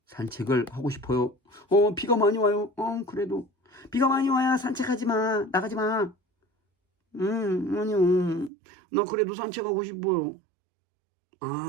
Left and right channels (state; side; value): drops out; left; at 8.5 s